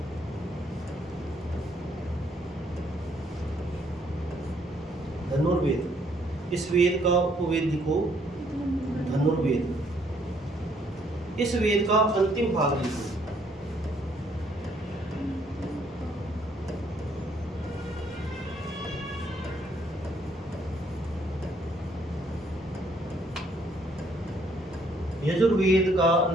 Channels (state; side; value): normal; both; correlation 0.67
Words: धनुर्वेद। इस वेद का उपवेद लिखो धनुर्वेद। इस वेद का अंतिम भाग लिखो। यजुर्वेद का